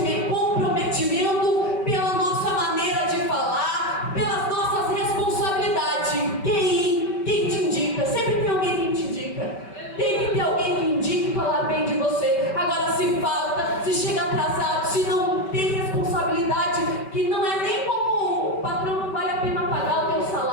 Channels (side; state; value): right; late; 5.2 ms